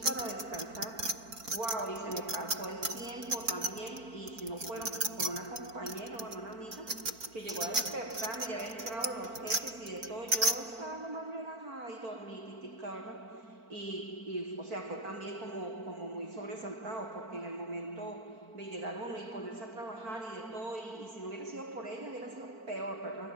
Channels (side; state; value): left; late; 4.5 ms